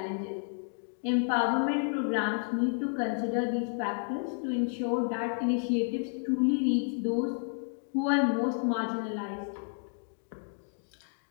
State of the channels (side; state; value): right; silent; 57 dB below the other